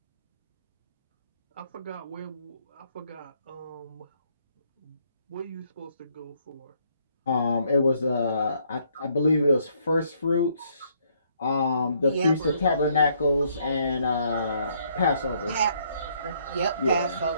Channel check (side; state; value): both; inverted; correlation -0.69